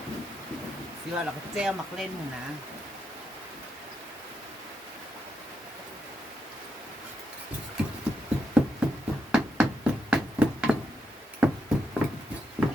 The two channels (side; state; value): both; normal; correlation 0.82